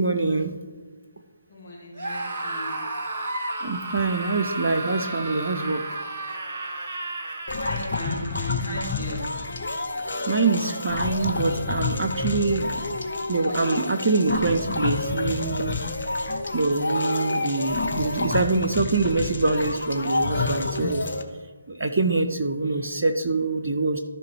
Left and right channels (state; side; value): inverted; both; correlation -0.68